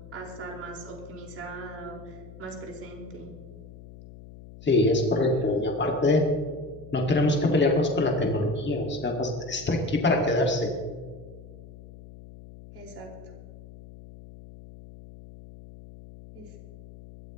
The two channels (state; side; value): noise; left; hum, 17 dB below the sound